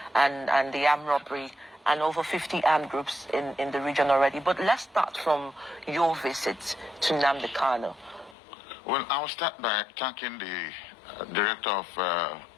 and the armed robbery, and over 50 armed groups in the region already. But let's start from your visit to Nnamdi Kanu. Well, I'll start by thanking the director of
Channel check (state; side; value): drops out; right; at 8.3 s